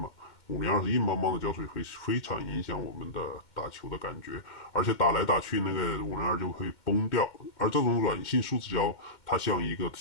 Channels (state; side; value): late; right; 2.1 ms